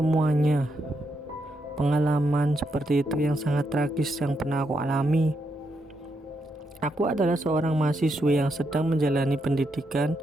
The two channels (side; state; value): both; normal; correlation 0.81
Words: pengalaman seperti itu yang sangat tragis yang pernah aku alami. Aku adalah seorang mahasiswi yang sedang menjalani pendidikan